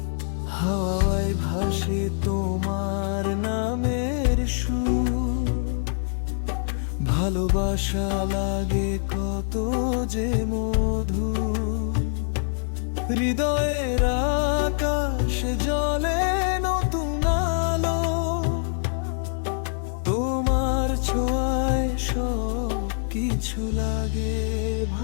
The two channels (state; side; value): silent; right; digital silence